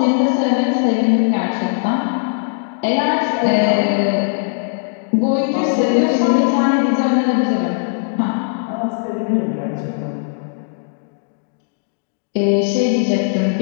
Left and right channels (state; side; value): silent; right; digital silence